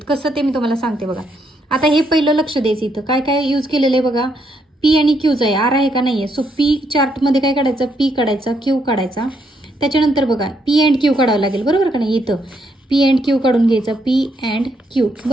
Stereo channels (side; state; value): both; normal; correlation 0.75